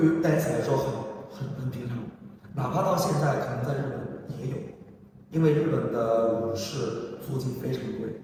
dance 来说很平常，哪怕到现在可能在日本也有，因为日本的舞室租金非常贵。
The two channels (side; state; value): both; identical; correlation 1.00